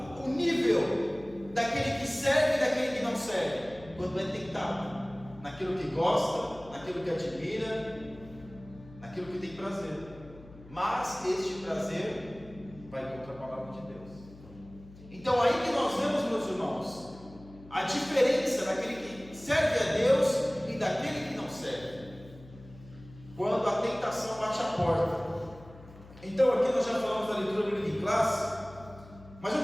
o nível daquele que serve e daquele que não serve? Quando é tentado naquilo que gosta, naquilo que admira, naquilo que tem prazer. Mas este prazer vai contra a palavra de Deus. Então aí que nós vemos, meus irmãos, a diferença daquele que serve a Deus e daquele que não serve. Quando a tentação bate a porta. Então aqui nós já falamos da leitura bíblica em classe, mas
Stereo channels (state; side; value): noise; left; hum, 20 dB below the sound